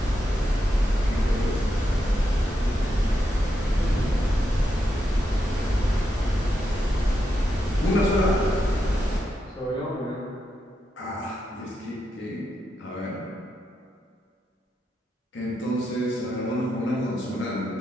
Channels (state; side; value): normal; both; correlation 0.84